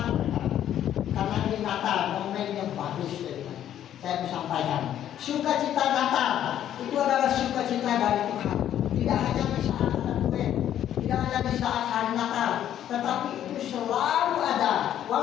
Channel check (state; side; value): quieter; right; 10.9 dB